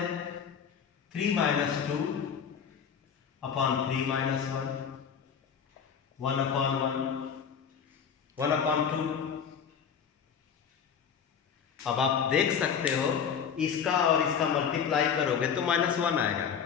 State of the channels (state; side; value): quieter; right; 7.3 dB